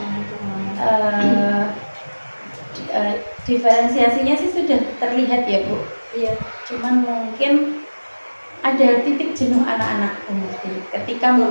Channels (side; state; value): both; inverted; correlation -1.00